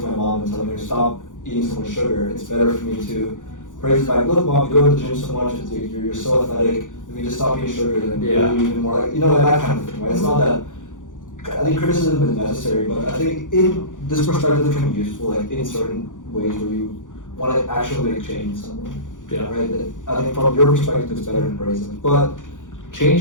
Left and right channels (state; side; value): late; right; 0.87 ms